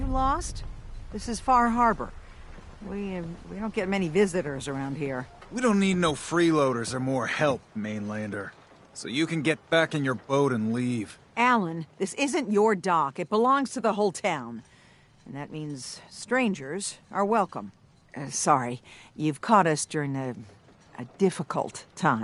lost? This is Far Harbor. We don't get many visitors around here. We don't need no freeloaders or more help, Mainlander. So you can get back in your boat and leave. Alan, this isn't your dock. It belongs to the whole town. And that means strangers are welcome. Sorry, you've caught us during a difficult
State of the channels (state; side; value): identical; both; correlation 1.00